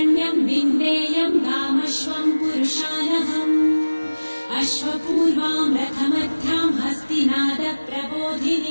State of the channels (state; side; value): inverted; both; correlation -1.00